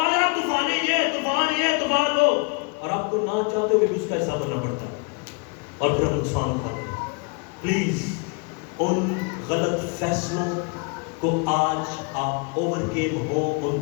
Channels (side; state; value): right; quieter; 32.6 dB